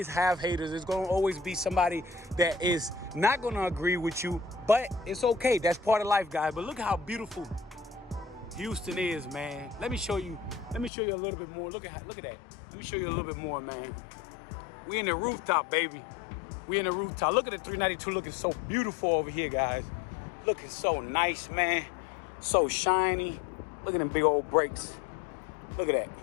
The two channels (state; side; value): drops out; right; at 10.9 s